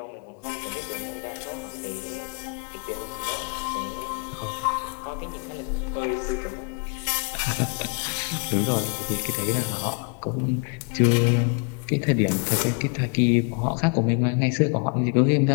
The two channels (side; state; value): right; quieter; 36.5 dB